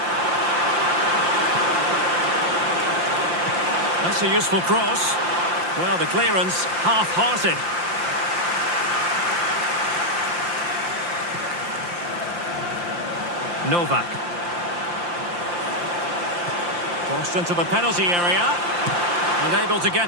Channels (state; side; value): late; left; 5.8 ms